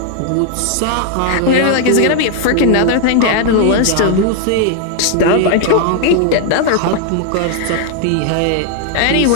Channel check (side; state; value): both; different; correlation 0.00